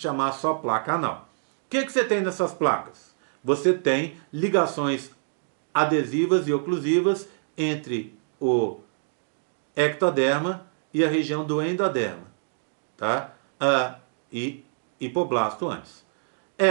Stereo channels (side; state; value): left; silent; digital silence